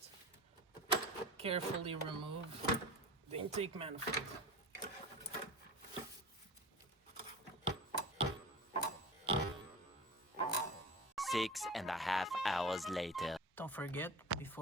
carefully remove the intake manifold. Six and a half hours later. Don't forget,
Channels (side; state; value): both; normal; correlation 0.33